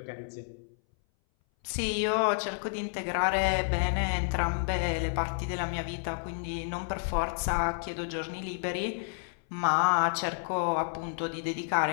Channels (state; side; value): silent; right; 58 dB below the other